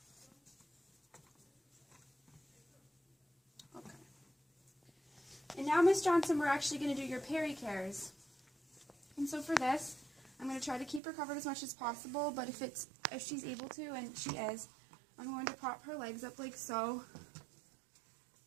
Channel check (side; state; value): left; drops out; at 11.0 s